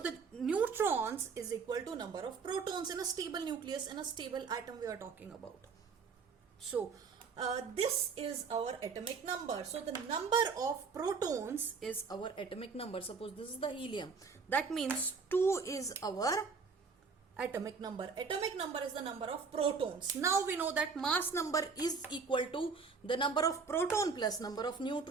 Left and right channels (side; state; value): left; quieter; 5.1 dB